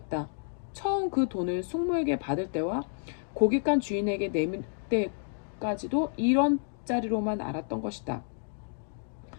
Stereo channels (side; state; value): right; silent; digital silence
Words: 처음 그 돈을 숙모에게 받을 때와 고깃간 주인에게 내밀 때까지도 이런 짜리로만 알았던 것이다.